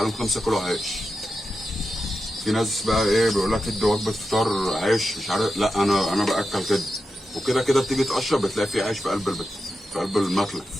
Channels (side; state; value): both; normal; correlation 0.90